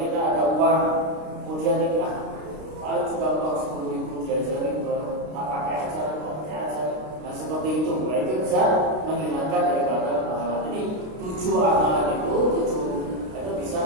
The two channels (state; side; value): late; left; 32 ms